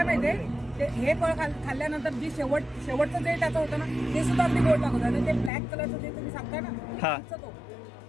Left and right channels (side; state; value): right; drops out; at 5.5 s